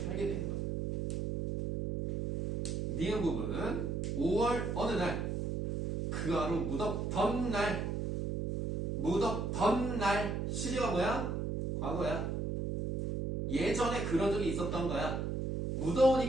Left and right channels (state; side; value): noise; right; hum, 1 dB below the sound